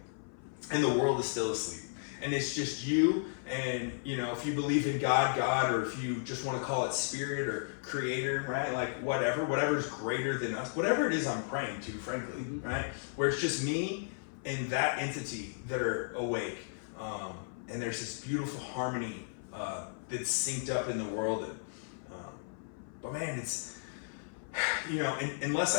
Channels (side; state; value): right; silent; 55 dB below the other